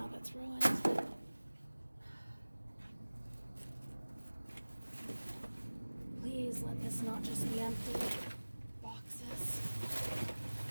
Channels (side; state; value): both; inverted; correlation -1.00